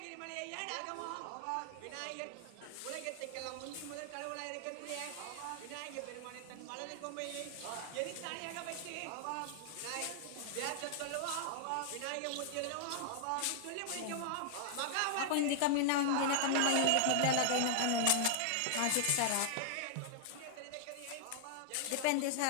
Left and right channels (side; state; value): both; different; correlation -0.01